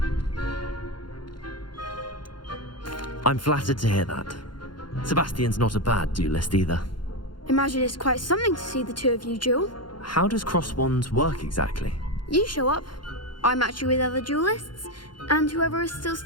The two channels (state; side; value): late; right; 0.71 ms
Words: I'm flattered to hear that. Sebastian's not a bad duelist either. Imagine it's quite something to see the two of you duel. How does cross wands work exactly? You show up, I match you with other duelists, and whoever is still